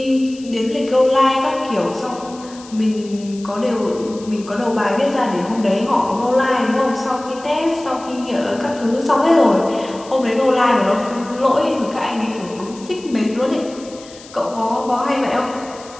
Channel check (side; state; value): left; noise; hiss, 20 dB below the sound